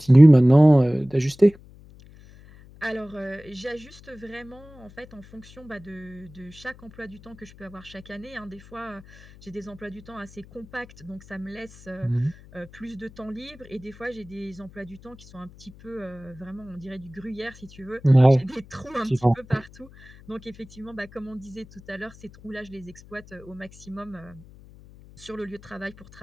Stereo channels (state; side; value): noise; left; hum, 22 dB below the sound